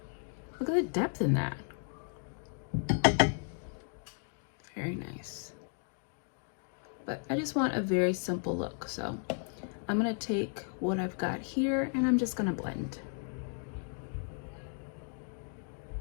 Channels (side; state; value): right; silent; 55 dB below the other